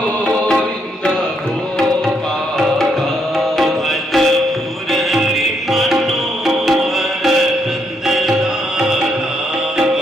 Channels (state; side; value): normal; both; correlation 0.75